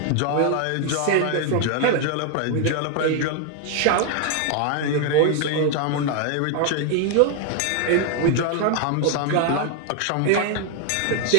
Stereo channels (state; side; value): different; both; correlation 0.00